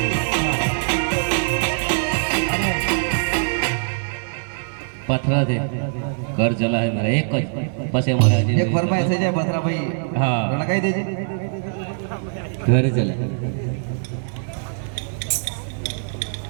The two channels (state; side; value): silent; left; digital silence